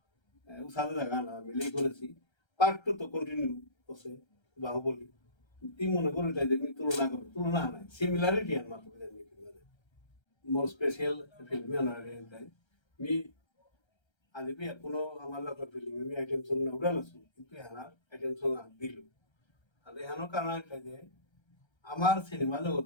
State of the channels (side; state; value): right; late; 1.3 ms